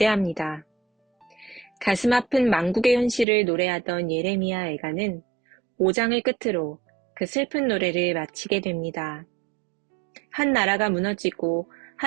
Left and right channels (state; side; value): drops out; left; at 3.2 s